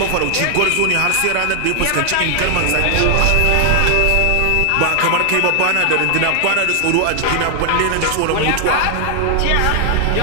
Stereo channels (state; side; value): different; both; correlation 0.00